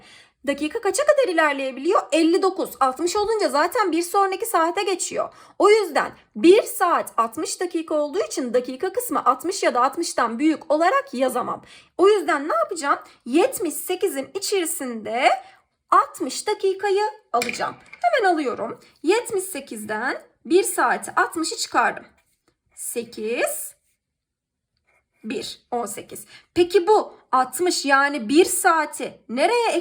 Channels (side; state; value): both; identical; correlation 1.00